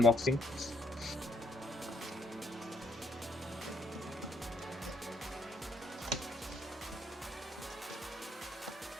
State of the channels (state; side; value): normal; both; correlation 0.71